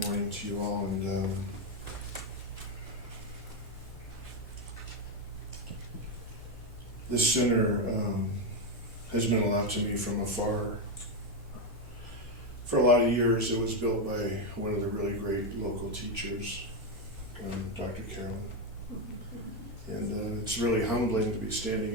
morning to you all. And this center has meant a lot to me from afar. For a lot of years, it was built by one of the really great local teachers, Dr. Carolyn. And it's really humbling to be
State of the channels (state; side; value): normal; both; correlation 0.07